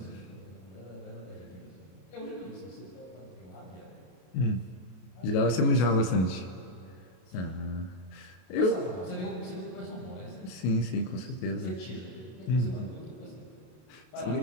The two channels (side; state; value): right; late; 32 ms